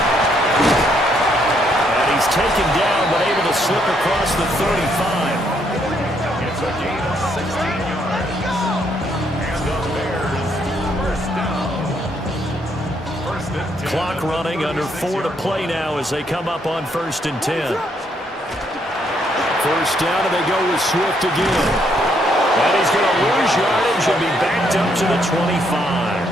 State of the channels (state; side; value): normal; both; correlation 0.72